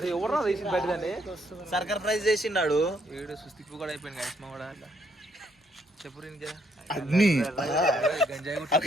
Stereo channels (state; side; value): normal; both; correlation 0.71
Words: ఎవరు తీసి పెట్టదండి సర్కార్ ప్రైజ్ చేసిండాడు వీడు సుస్థిప్పు కూడా అయిపోయింది గైస్మా కూడా చెప్పు ఇంకా అన్ని గంజాయి